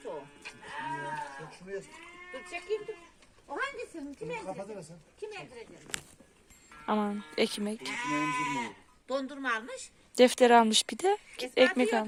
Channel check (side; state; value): both; identical; correlation 1.00